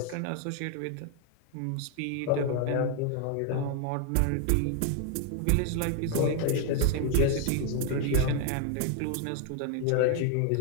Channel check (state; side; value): different; both; correlation 0.00